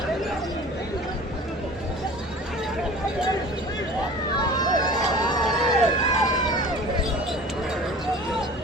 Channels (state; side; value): normal; both; correlation 0.42